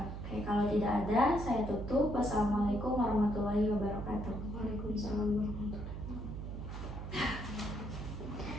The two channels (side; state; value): right; noise; hum, 7 dB below the sound